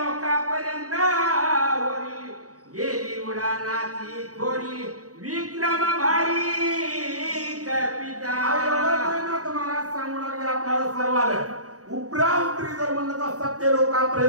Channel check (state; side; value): late; left; 0.66 ms